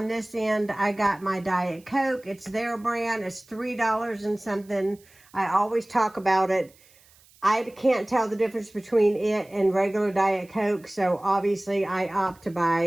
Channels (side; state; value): right; noise; hiss, 28 dB below the sound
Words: this end, I got my Diet Coke. It's their brand. It's $3 and something. I always talk about it. I can't tell the difference between it and regular Diet Coke, so obviously I opt to